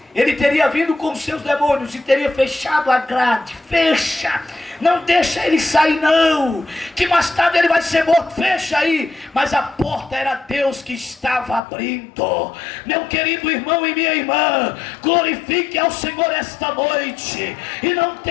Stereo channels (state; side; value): drops out; right; at 11.6 s